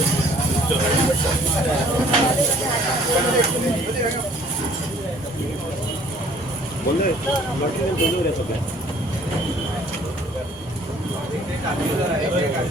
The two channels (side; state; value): both; normal; correlation 0.56